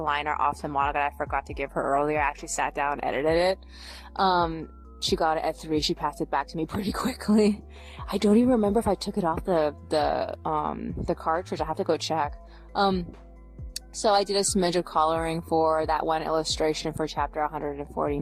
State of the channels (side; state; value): both; identical; correlation 1.00